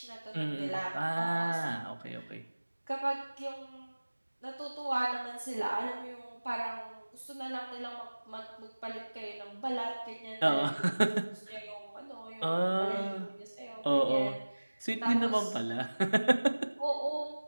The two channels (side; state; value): both; inverted; correlation -1.00